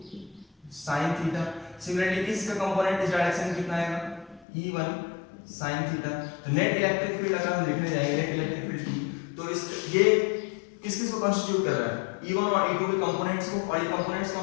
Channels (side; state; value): right; drops out; at 4.5 s